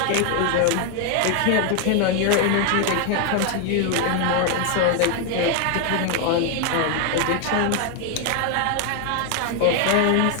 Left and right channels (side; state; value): both; different; correlation 0.00